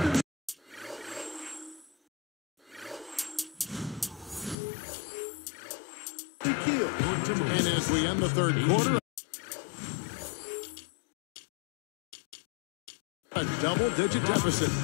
and as we end the third quarter, a double-digit deficit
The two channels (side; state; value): right; drops out; at 4.5 s